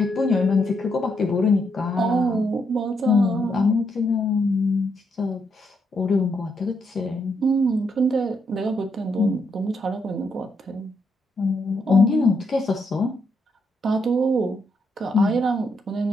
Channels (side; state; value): both; normal; correlation 0.78